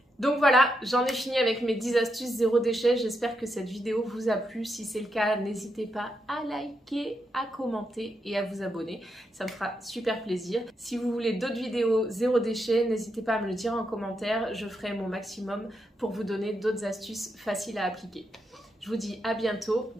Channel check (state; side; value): normal; both; correlation 0.82